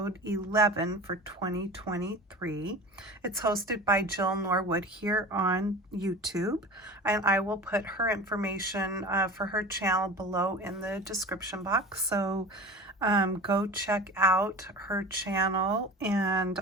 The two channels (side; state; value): both; normal; correlation 0.35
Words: 11 for 2023. It's hosted by Jill Norwood here on YouTube, and I will put her information for her channel below in the description box. So go check out her channel and